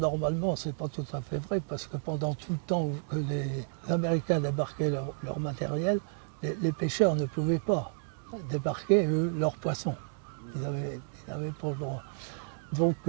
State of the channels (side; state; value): left; silent; digital silence